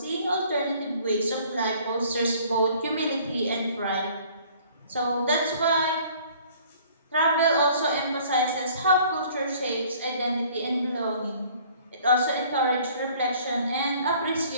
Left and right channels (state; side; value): inverted; both; correlation -0.54